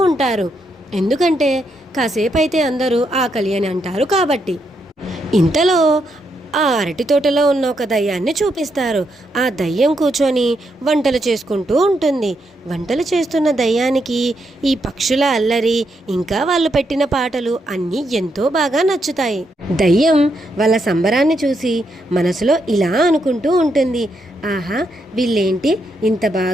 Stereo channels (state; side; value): normal; both; correlation 0.79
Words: ఉంటారు. ఎందుకంటే కాసేపు అయితే అందరూ ఆకలి అని అంటారు కాబట్టి. ఇంతలో ఆ అరటి తోటలో ఉన్న ఒక దయ్యాన్ని చూపిస్తారు. ఆ దయ్యం కూర్చొని వంటలు చేసుకుంటూ ఉంటుంది. వంటలు చేస్తున్న దయ్యానికి ఈ పక్షుల అల్లరి ఇంకా వాళ్ళు పెట్టిన పాటలు అన్నీ ఎంతో బాగా నచ్చుతాయి. దయ్యం వాళ్ళ సంబరాన్ని చూసి మనసులో ఇలా అనుకుంటూ ఉంటుంది, ఆహా, వీళ్ళేంటి ఇంత